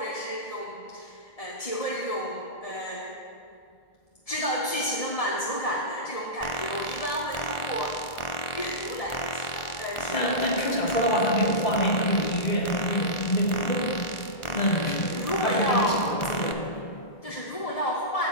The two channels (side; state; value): right; late; 1.4 ms